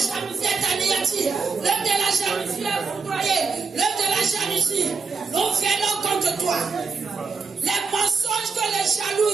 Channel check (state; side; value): quieter; left; 4.9 dB